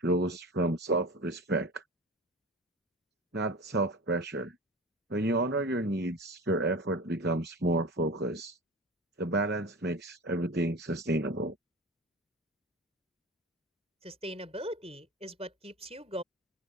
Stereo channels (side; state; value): both; normal; correlation 0.33